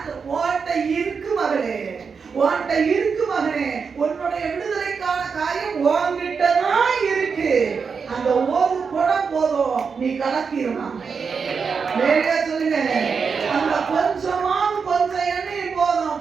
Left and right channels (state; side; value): quieter; left; 5.6 dB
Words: ஓட்ட இருக்கு மகளே, ஓட்ட இருக்கு மகனே, உன்னுடைய விடுதலைக்கான காரியம் உன்கிட்ட தான் இருக்கு. அந்த ஒரு குடம் போதும், நீ கலக்கிடலாம். வேலையா சொல்லுங்க, அந்த கொஞ்சம் எண்ணெய்